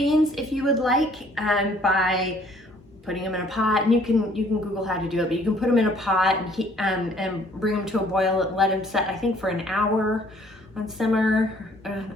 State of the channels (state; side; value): normal; both; correlation 0.60